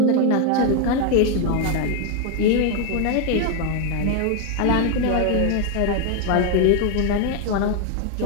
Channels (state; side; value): different; both; correlation 0.01